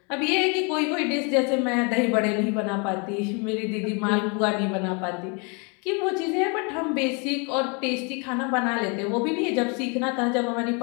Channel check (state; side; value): quieter; right; 33.4 dB